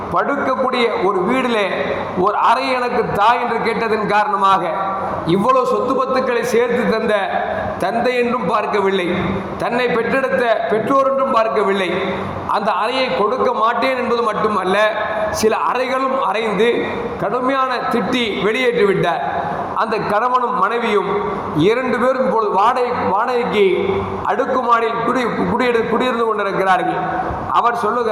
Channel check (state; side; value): identical; both; correlation 1.00